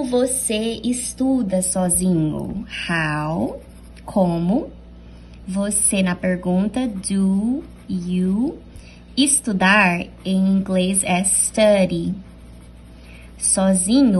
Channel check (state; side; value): identical; both; correlation 1.00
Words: você estuda sozinho? How, como. Você, na pergunta, do you. Estudar, em inglês, é study.